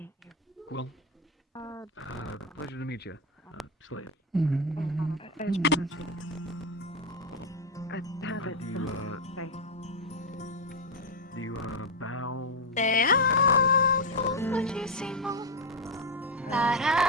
Well. Quill. Pleasure to meet you. Slade. I have it. Do you bow? Te amo muchísimo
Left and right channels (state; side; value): normal; both; correlation 0.07